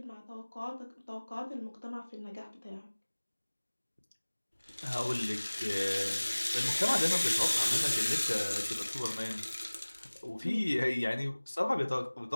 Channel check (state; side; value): inverted; both; correlation -1.00